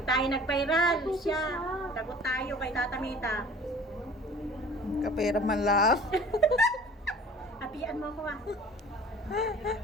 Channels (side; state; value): both; normal; correlation 0.46